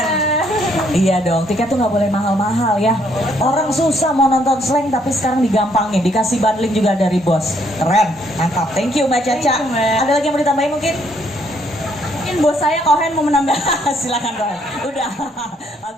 Iya dong, tiket tuh nggak boleh mahal-mahal ya. Orang susah mau nonton slang tapi sekarang digampangin, dikasih bundling juga dari bos. Keren, mantap. Thank you Mbak Caca. Thank you, Mbak. Ada lagi yang mau ditambahin mungkin? Mungkin bos saya Kohen mau menambah. Silakan Kohen. Udah.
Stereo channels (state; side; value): normal; both; correlation 0.69